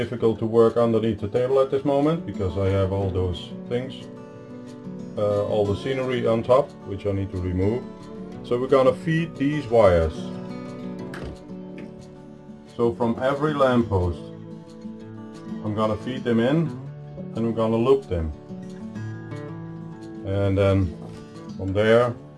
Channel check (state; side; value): identical; both; correlation 1.00